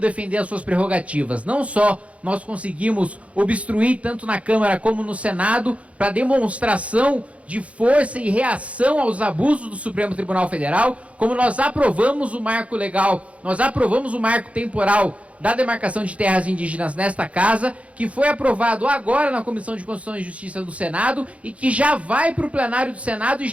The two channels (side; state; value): left; late; 0.064 ms